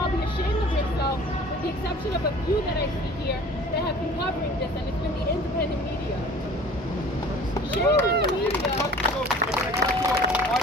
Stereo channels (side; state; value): both; normal; correlation 0.46